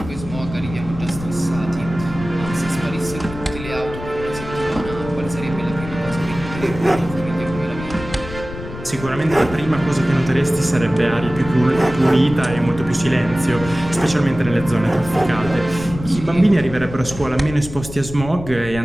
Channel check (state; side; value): noise; left; rumble, 11 dB below the sound